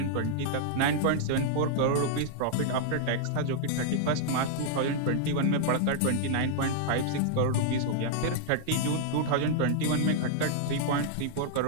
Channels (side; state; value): both; different; correlation -0.01